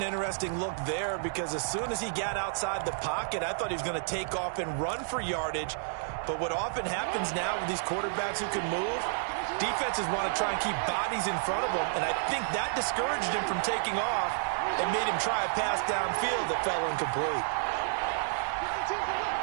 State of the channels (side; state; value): left; silent; digital silence